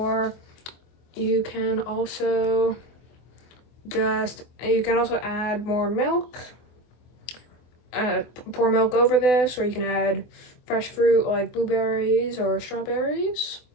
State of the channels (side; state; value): right; late; 24 ms